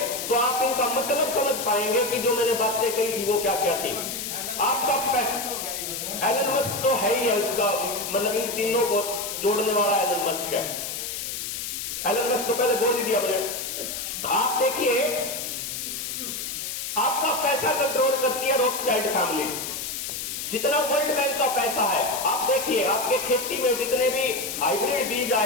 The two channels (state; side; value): noise; left; hiss, 5 dB below the sound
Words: तो आप इनका मतलब समझ पाएंगे कि जो मैंने बातें कही थी वो क्या क्या थी। आपका एलन मस्क तो है ही है, उसका मतलब इन तीनों को जोड़ने वाला एलन मस्क है। एलन मस्क तो पहले बोल ही दिया मैंने। आप देखिए, आपका पैसा कंट्रोल करती है रॉथस्चाइल्ड फैमिली। जितना वर्ल्ड बैंक का पैसा है, आप देखिए आपके खेती में जितने भी हाइब्रिड बीज